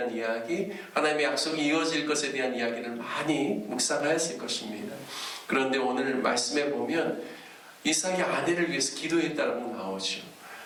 이야기, 하나님의 약속이 이어질 것에 대한 이야기를 많이 묵상하였을 것입니다. 그런데 오늘 말씀에 보면 이삭이 아내를 위해서 기도했다고 나오죠.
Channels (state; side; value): identical; both; correlation 1.00